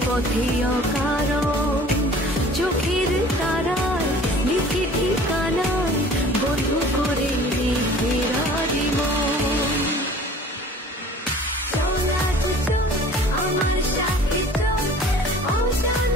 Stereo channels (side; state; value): both; normal; correlation 0.47